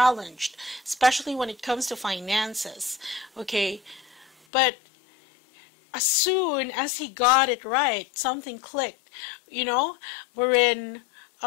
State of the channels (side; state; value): right; drops out; at 4.3 s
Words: especially when it comes to finances. Okay, but as soon as he got it right, something clicked, you know, wherein